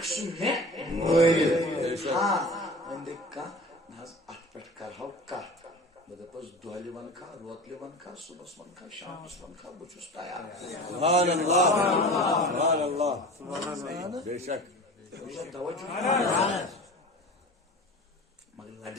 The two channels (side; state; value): both; normal; correlation 0.36